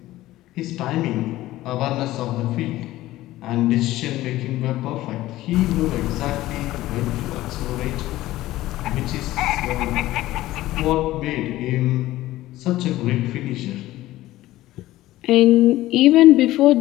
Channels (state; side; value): quieter; right; 16.1 dB